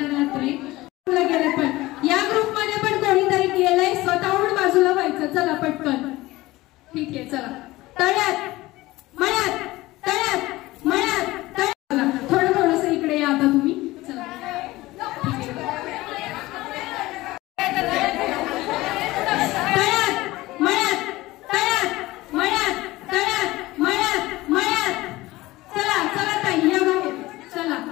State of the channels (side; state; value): right; quieter; 18.8 dB